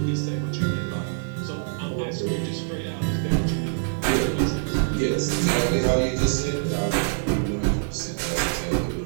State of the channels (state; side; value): silent; left; 56 dB below the other